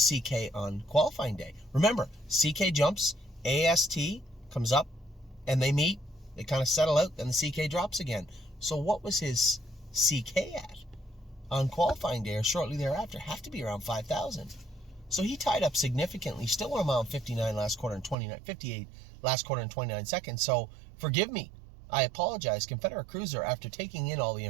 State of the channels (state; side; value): drops out; left; at 18.2 s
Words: CK on qualifying day? Remember, CK jumps, AST comes up, and they meet. They kind of settle out, then the CK drops again. So what was his CK at on qualifying day or shortly thereafter? Have to be around 5,000. So he tied up significantly. Still went a mile 59 last quarter and 58 last quarter and 29 seconds. So forgive me. I apologize. Confederate Cruiser, after taking in all the